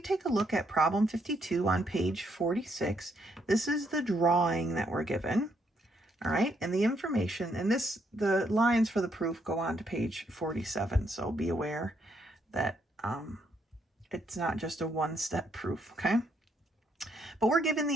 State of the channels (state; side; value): normal; both; correlation 0.74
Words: a look at problem 52 on page 46, this is the drawing that we're given. All right, and the information, and the lines for the proof go on to page 47, so be aware that it's not just a one-step proof, okay? But we're given